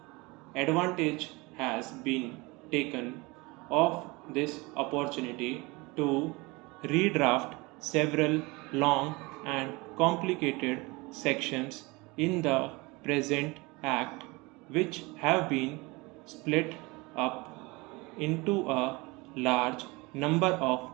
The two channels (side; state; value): left; quieter; 24.7 dB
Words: Advantage has been taken of this opportunity to redraft several long and complicated sections in the present Act, which have been split up into a large number of